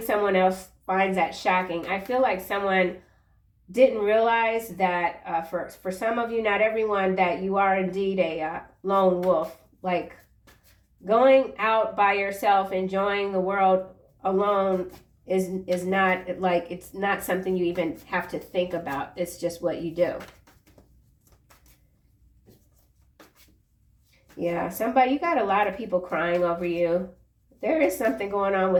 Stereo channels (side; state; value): both; identical; correlation 1.00